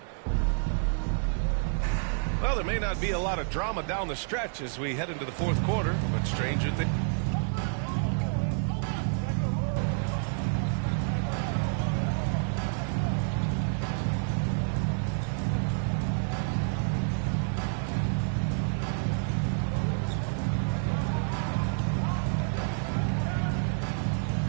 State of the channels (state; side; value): silent; left; 59 dB below the other